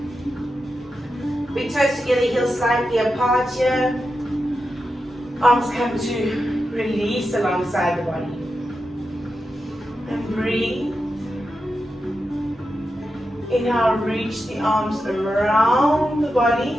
Big toes together, heels slightly apart here. Arms come to release alongside the body. And breathe. Inhale, reach the arms around the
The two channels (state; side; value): normal; both; correlation 0.89